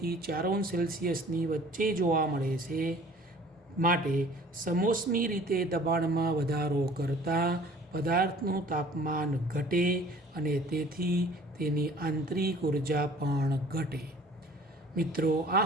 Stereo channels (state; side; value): normal; both; correlation 0.50